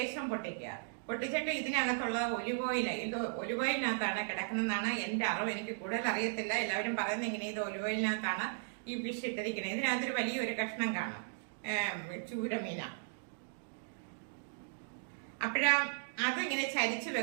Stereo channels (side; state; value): left; silent; digital silence